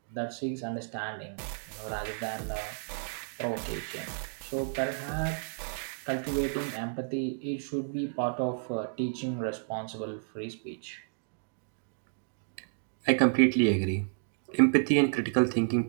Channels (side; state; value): left; silent; digital silence